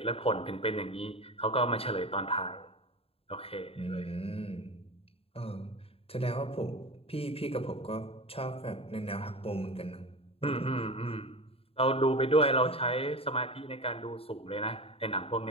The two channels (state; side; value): late; right; 0.28 ms